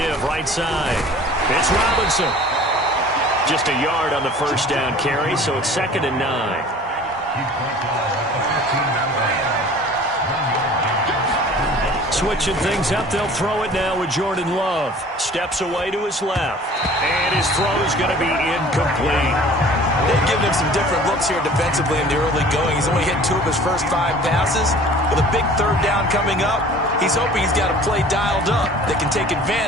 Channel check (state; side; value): normal; both; correlation 0.47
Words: right side. It's Robinson. Just a yard on the first down carry, so it's 2nd and 9. Switching things up, they'll throw it now with Jordan Love. Steps away to his left. And his throw is going to be incomplete. They've given him some different looks here defensively in the early going. He's only hit 2 of his first 5 passes. With a big 3rd down coming up, he's hoping he's got a play dialed up that can take